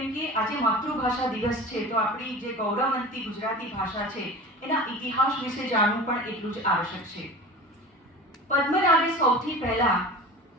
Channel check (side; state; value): both; normal; correlation 0.35